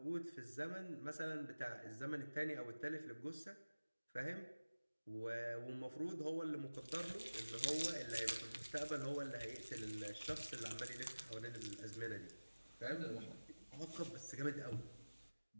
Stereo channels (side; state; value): both; inverted; correlation -1.00